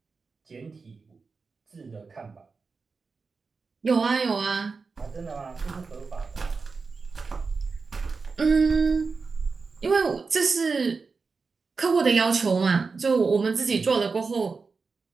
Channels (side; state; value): left; quieter; 4.6 dB